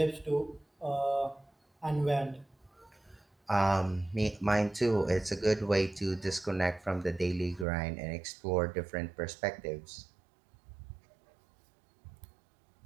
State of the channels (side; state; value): left; drops out; at 7.7 s